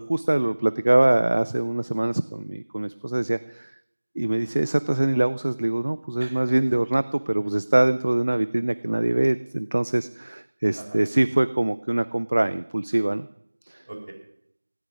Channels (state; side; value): inverted; both; correlation -1.00